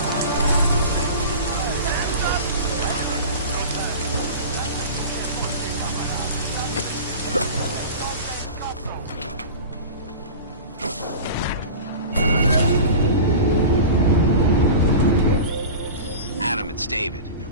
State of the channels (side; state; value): both; inverted; correlation -0.34